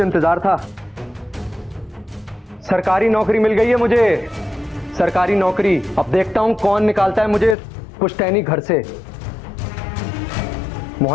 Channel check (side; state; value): right; drops out; at 7.6 s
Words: इंतजार था। सरकारी नौकरी मिल गई है मुझे, सरकारी नौकरी। अब देखता हूं कौन निकालता है मुझे पुश्तैनी घर से।